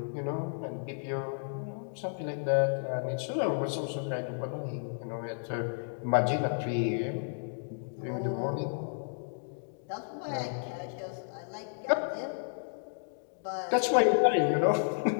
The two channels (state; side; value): silent; right; digital silence